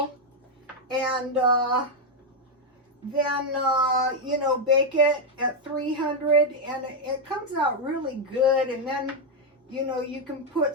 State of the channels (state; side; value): normal; both; correlation 0.02